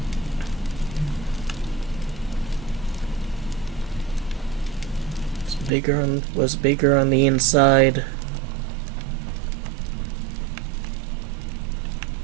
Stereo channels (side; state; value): left; drops out; at 5.7 s